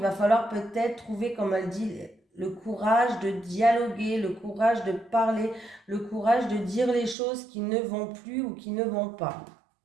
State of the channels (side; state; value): left; drops out; at 7.2 s